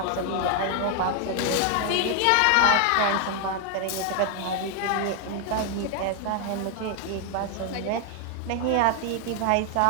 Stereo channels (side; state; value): both; different; correlation 0.00